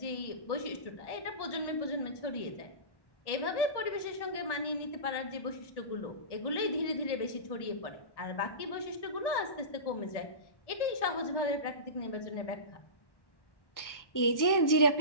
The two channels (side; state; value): right; late; 1.1 ms